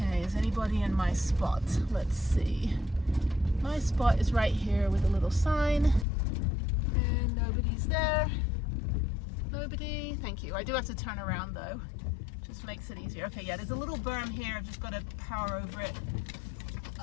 is anybody in my spot? Let's see. My spot is right here with a little sign, and nobody's there. Nobody. Thank you. I do have to turn around though. Just makes it easier. Okay, yeah, there's a little berm here. I've just got to power over it.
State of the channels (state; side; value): drops out; right; at 6.1 s